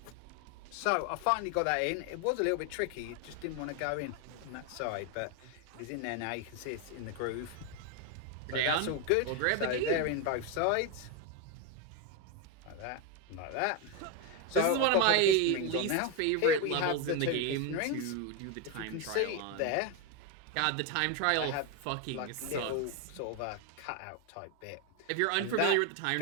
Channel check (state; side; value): different; both; correlation 0.02